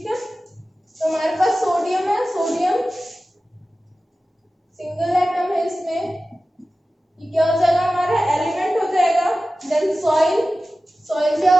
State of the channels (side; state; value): both; normal; correlation 0.95